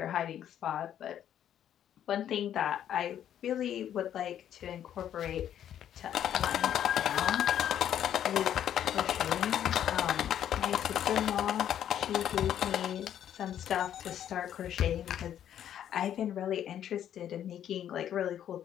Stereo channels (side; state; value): right; quieter; 10.3 dB